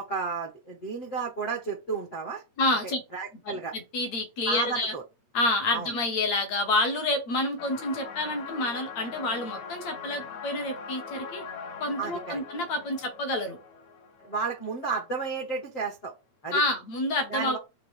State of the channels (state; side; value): late; right; 8.6 ms